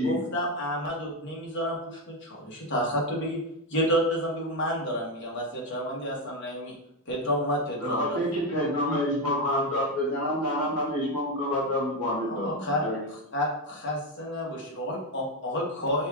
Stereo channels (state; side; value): normal; both; correlation 0.08